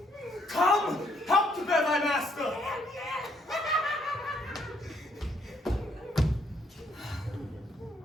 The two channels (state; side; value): normal; both; correlation 0.71